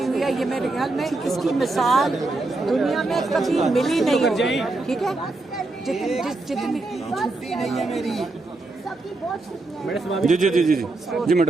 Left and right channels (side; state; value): left; quieter; 3.1 dB